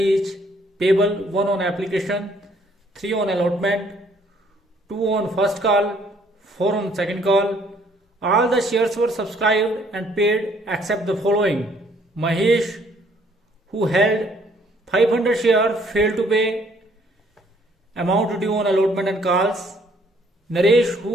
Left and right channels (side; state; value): both; normal; correlation 0.63